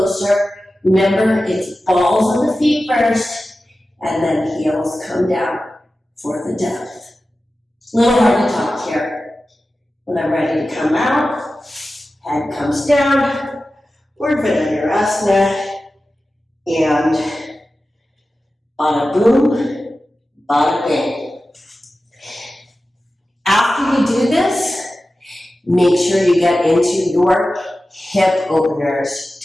Remember, it's balls on the feet first, and then heels come down for the depth. A little hard to talk here. When I'm ready to come out, head comes down, urdhva dhanurasana, and bada boom, bada bing. After you do this, make sure you get into your hip openers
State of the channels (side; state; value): both; normal; correlation 0.94